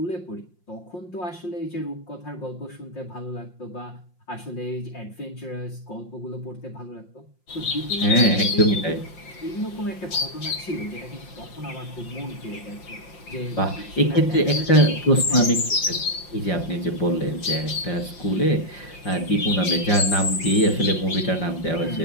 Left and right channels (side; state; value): right; late; 5.6 ms